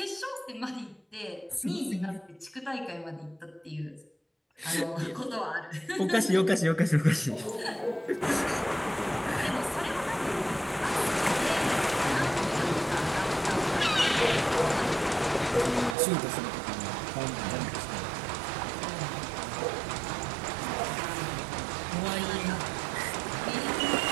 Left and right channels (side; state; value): left; drops out; at 16.0 s